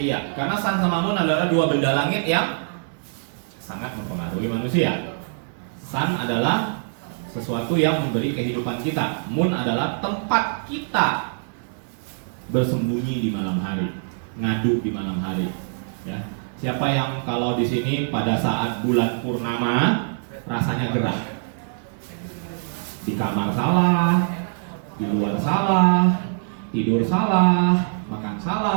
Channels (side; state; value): left; silent; digital silence